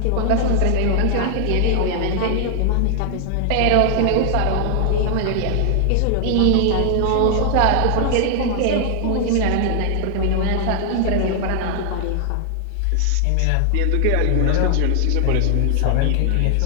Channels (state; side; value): different; both; correlation 0.00